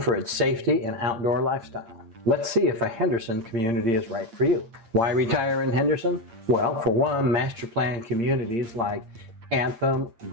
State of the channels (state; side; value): late; left; 8.7 ms